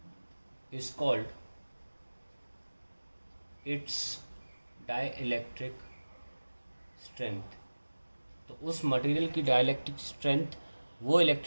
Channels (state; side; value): inverted; both; correlation -1.00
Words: is called its dielectric strength। तो उस मटेरियल की डाइलेक्ट्रिक स्ट्रेंथ वो